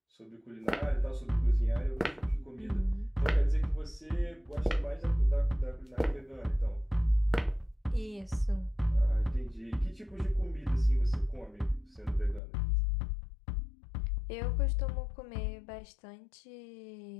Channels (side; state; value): right; drops out; at 12.4 s